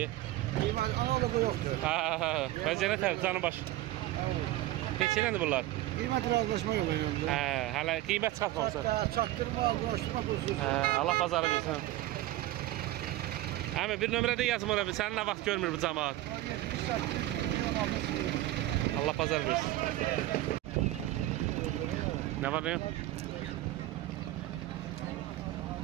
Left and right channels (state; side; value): quieter; left; 15.9 dB